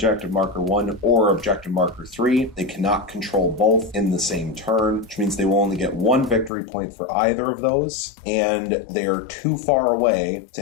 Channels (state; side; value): drops out; right; at 6.5 s